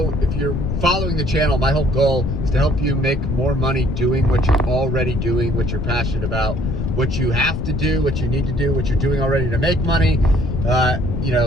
if you're following the channel, my whole goal is to help you make more money doing what you're already doing, what you're passionate about, what you have to do, what you need to do, what you're doing already to make money, you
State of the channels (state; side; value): noise; left; rumble, 2 dB below the sound